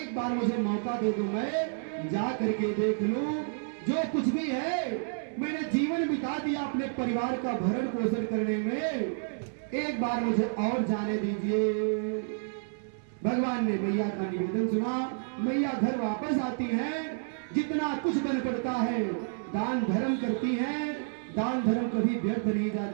बार मुझे मौका दे दो, मैं जा करके देख लूं। जो कुछ भी है मैंने जीवन बिता दिया अपने परिवार का भरण पोषण करने में, एक बार मुझे और जाने दीजिए। भगवान ने मैया का निवेदन सुना। मैया घर वापस आती हैं, जितना कुछ बन पड़ता है दान धर्म करती हैं। दान धर्म कभी व्यर्थ नहीं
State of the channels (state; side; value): silent; left; 58 dB below the other